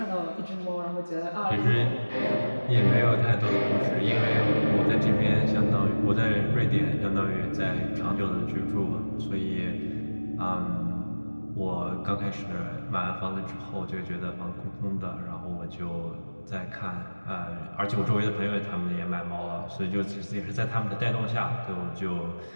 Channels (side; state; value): both; inverted; correlation -1.00